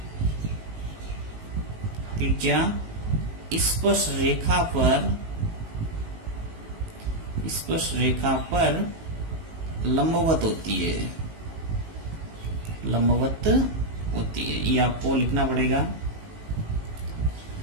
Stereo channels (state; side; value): late; left; 19 ms